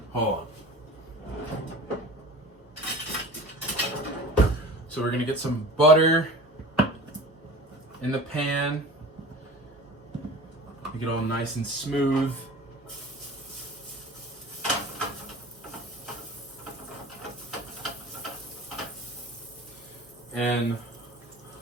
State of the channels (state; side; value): normal; both; correlation 0.39